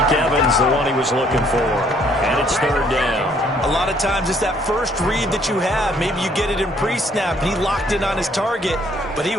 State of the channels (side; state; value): both; normal; correlation 0.64